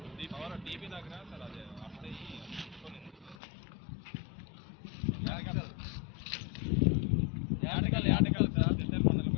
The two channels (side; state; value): right; drops out; at 3.4 s